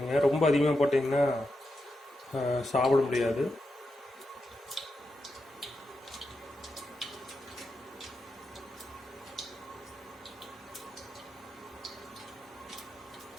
ரொம்ப அதிகமாக போட்டிங்கன்னா சாப்பிட முடியாது.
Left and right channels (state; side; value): normal; both; correlation 0.87